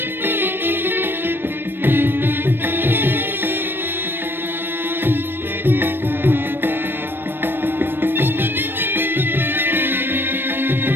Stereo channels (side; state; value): left; late; 0.098 ms